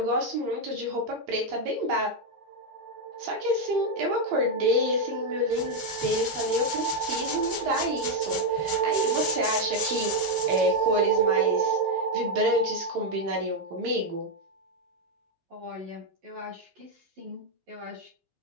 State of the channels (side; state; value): left; late; 11 ms